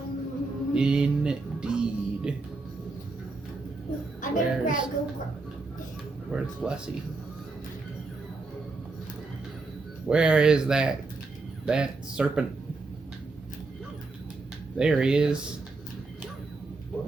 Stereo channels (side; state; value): left; quieter; 3.6 dB